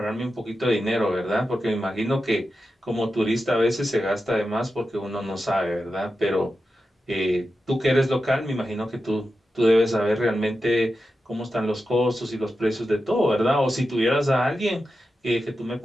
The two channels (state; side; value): normal; both; correlation 0.90